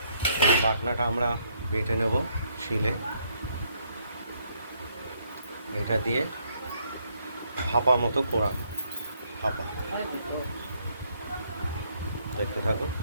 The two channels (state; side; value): inverted; both; correlation -0.71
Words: বাটনাটা আমরা বেটে নেব শিলে, এটা দিয়ে ভাপা মতো করা ভাপা দেখতে থাকুন।